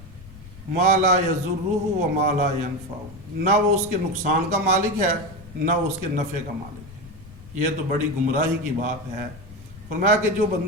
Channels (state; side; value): noise; left; rumble, 18 dB below the sound